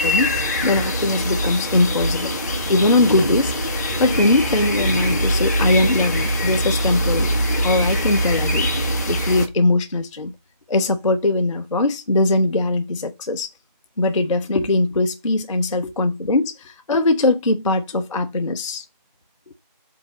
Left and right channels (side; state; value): both; inverted; correlation -0.59